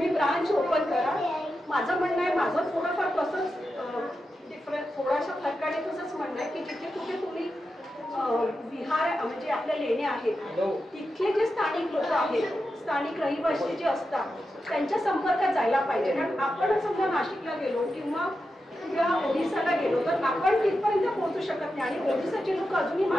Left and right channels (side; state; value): both; normal; correlation 0.89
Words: ब्रांच ओपन करा. माझं म्हणणं आहे, माझं थोडंफार तसंच डिफरंट थोडासा फरकाने तसंच म्हणणं आहे की जिथे कुठे तुम्ही विहार म्हणजे आपल्या लेण्या आहेत तिथले जे स्थानिक लोक आहेत, स्थानिक रहिवासी जे असतात त्यांच्या संपर्कात जायला पाहिजे. कारण आपण समजा नाशिकला गेलो किंवा ओडिसाला गेलो तर आपण तिथपर्यंत पोहोचू शकत नाही. आणि ओडिसाचे लोक अजूनही